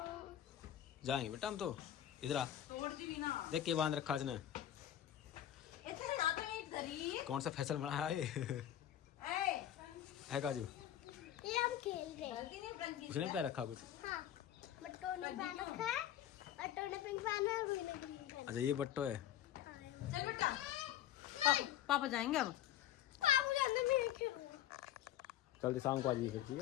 जाएंगे बेटा हम तो। इधर आ तोड़ दी भी ना। देख के बांध रखा इसने। इतने ना तो एक धरी कौन सा फैसल बनाया है काजू। ये हम खेल रहे हैं। उसने पैर रखा कुछ। हाँ बट्टो ने पहन रखा है। बट्टो ने पिंक पहना है। रुई ने पिंक पहना अच्छा ये बट्टो है। है। चल बेटा पापा जाएंगे अब। बाबू जाने में खेलूंगा। कल शाम को आ जाइए फिर ठीक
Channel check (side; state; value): right; quieter; 11.6 dB